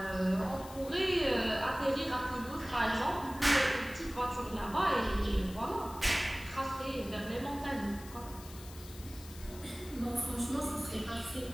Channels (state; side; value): noise; left; hiss, 17 dB below the sound